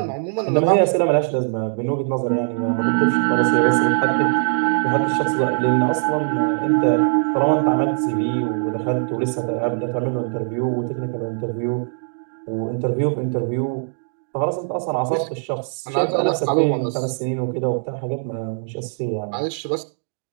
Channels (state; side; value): silent; left; digital silence